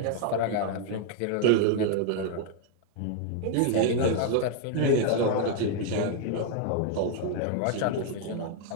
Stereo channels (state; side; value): different; both; correlation 0.00